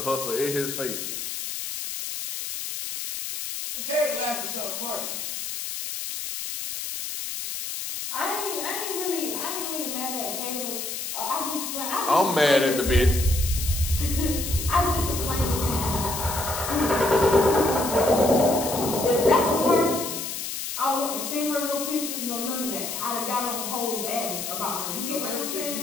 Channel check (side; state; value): left; noise; hiss, 5 dB below the sound